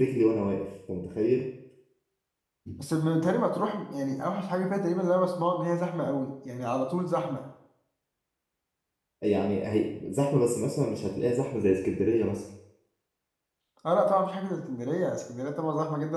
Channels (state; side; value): identical; both; correlation 1.00